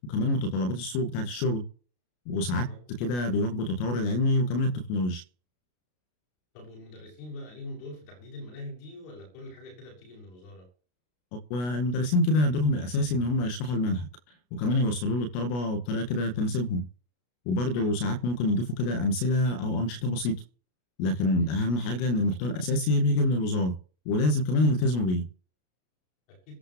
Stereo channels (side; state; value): right; late; 33 ms